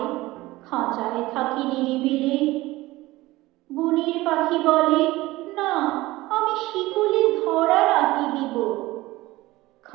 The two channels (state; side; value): quieter; left; 18.8 dB